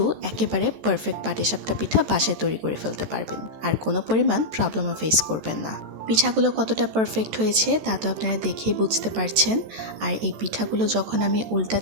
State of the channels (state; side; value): late; left; 14 ms